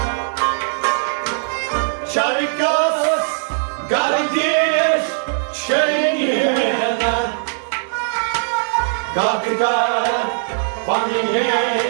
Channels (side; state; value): left; silent; 58 dB below the other